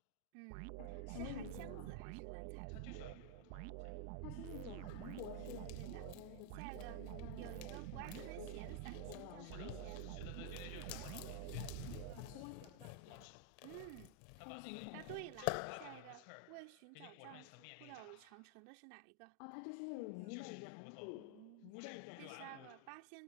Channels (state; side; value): different; both; correlation 0.00